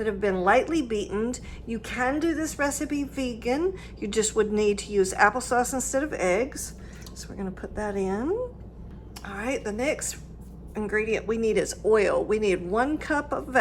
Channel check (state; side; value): identical; both; correlation 1.00